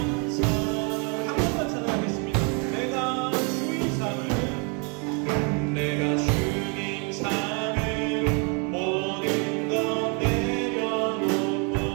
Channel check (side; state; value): left; quieter; 35.1 dB